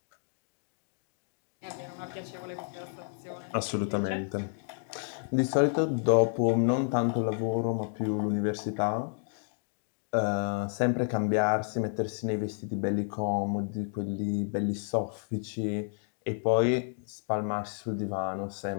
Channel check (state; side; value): silent; right; 57 dB below the other